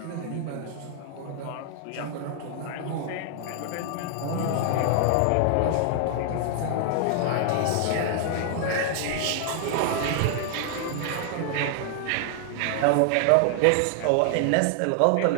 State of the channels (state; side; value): different; both; correlation 0.00